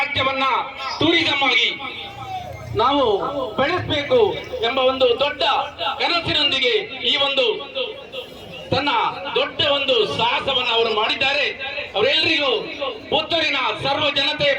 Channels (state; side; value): identical; both; correlation 1.00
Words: ಟೂರಿಸಂ ಆಗಿ ನಾವು ಬೆಳೆಸಬೇಕು ಎಂಬ ಒಂದು ದೊಡ್ಡ ಕನಸಿನೊಂದಿಗೆ ಈ ಒಂದು ತನ್ನ ದೊಡ್ಡ ಒಂದು ಸಾಹಸವನ್ನು ಅವರು ಮಾಡಿದ್ದಾರೆ. ಅವರೆಲ್ಲರಿಗೂ ಪುತ್ತೂರಿನ ಸರ್ವ ಜನತೆಯ